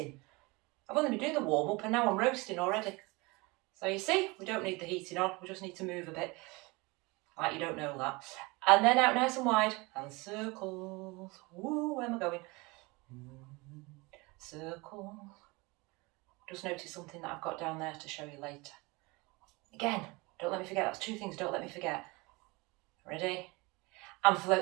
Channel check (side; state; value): left; quieter; 25.1 dB